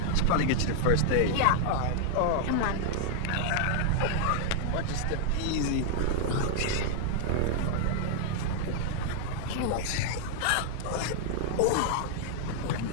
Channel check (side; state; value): both; different; correlation -0.01